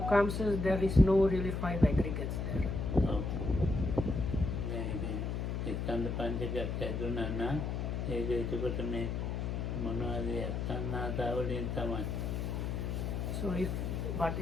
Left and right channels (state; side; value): noise; left; hum, 2 dB below the sound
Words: says there is no really 5 aggregates there. So if